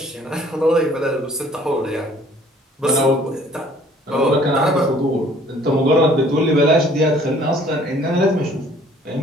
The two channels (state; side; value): normal; both; correlation 0.56